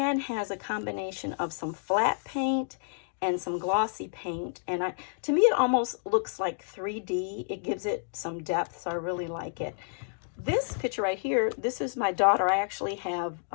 has a combination of some flat paint and some glossy paint, and to me it almost looks like 3D. It gives it some depth, so I really like it. This picture right here, this is my daughter. I actually have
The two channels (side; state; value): right; silent; digital silence